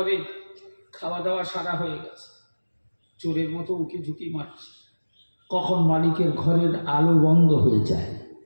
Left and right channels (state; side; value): inverted; both; correlation -1.00